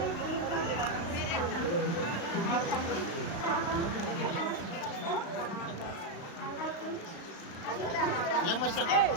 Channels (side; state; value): right; late; 35 ms